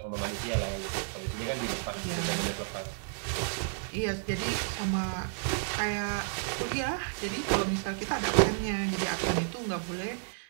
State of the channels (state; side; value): silent; left; 57 dB below the other